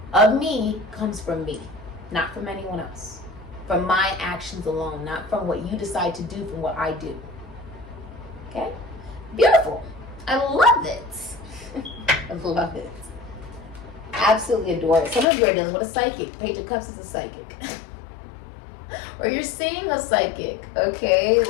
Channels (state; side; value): drops out; right; at 15.2 s